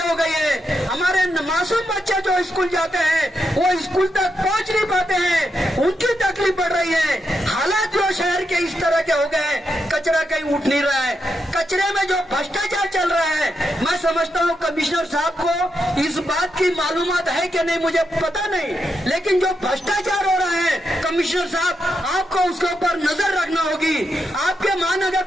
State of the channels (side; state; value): both; normal; correlation 0.84